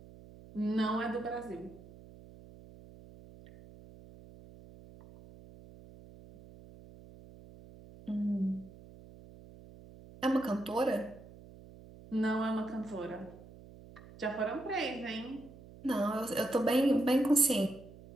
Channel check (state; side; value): noise; right; hum, 19 dB below the sound